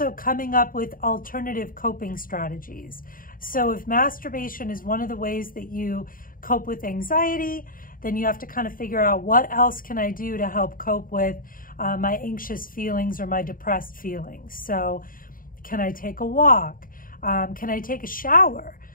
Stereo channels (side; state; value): right; late; 0.41 ms